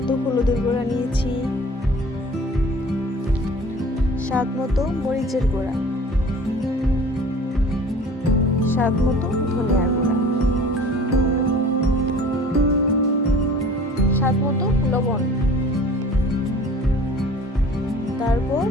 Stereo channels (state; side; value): normal; both; correlation 0.45